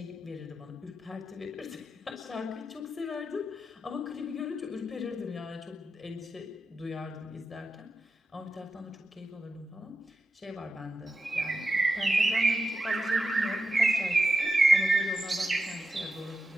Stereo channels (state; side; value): normal; both; correlation 0.89